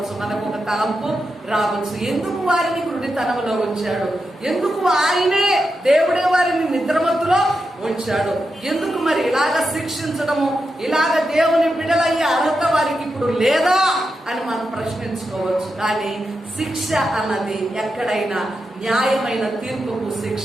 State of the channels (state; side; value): normal; both; correlation 0.88